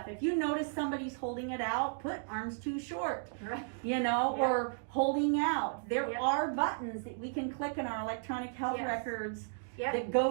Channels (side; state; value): left; silent; digital silence